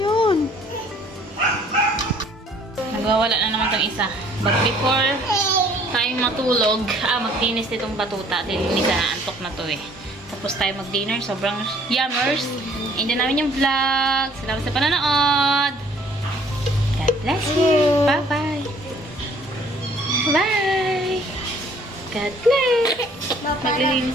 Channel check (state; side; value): normal; both; correlation 0.58